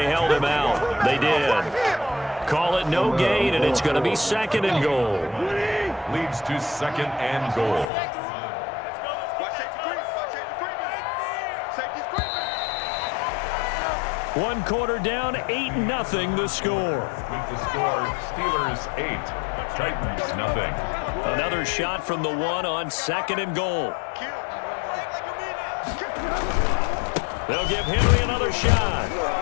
held him out. They did. Call it no gain, and it's going to be second and goal. Leads to second and goal. One quarter down, 8-0 the score. With the score, Steelers 8, Titans nothing. Another shot from the one on second and goal. They'll give Henry another shot.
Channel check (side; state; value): right; drops out; at 7.9 s